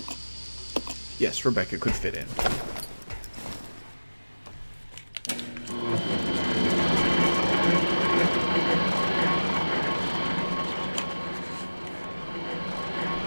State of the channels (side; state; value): both; inverted; correlation -1.00